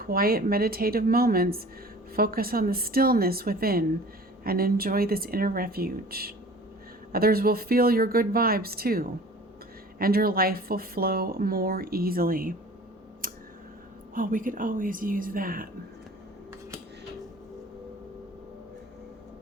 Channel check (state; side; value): normal; both; correlation 0.44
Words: meditative moments, focus on the stillness within and enjoy this inner refuge. Others will feel your good vibes too, and your life will flow more easily. Well, we could always use that.